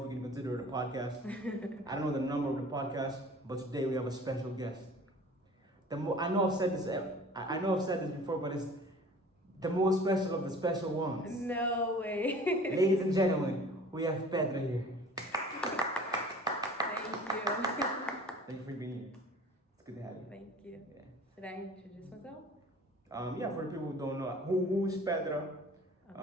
we can consider it a podcast. I don't know the number of the podcast, but today we have a special guest. I know I've said this. I know I've said this before, but it's the most special of the special ones. No way. Ladies and gentlemen, we have Petra here. Thank you. Thank you for being here. It's good to have you. Thank you. Yeah. Should I introduce myself? Yeah, for the people who don't know, who is Petra?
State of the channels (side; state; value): both; normal; correlation 0.45